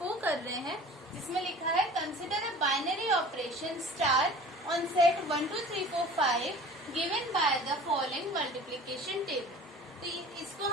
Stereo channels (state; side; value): normal; both; correlation 0.43